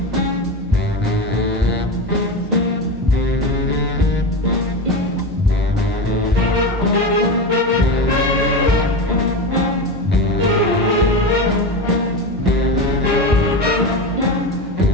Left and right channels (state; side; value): normal; both; correlation 0.21